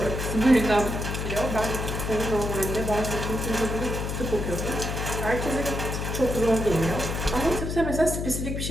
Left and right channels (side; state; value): left; noise; hum, 3 dB below the sound